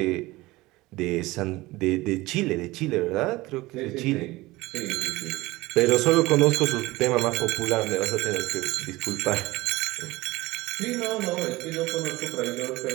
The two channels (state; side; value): quieter; left; 20.1 dB